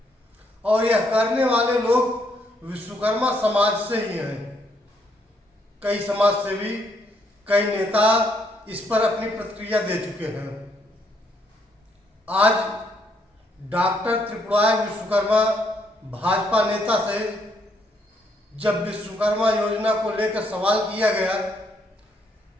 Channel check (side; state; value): both; normal; correlation 0.72